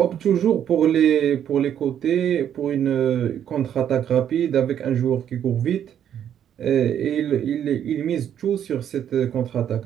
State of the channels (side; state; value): left; quieter; 9.6 dB